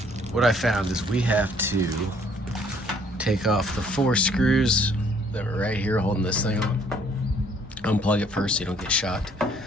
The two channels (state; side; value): normal; both; correlation 0.62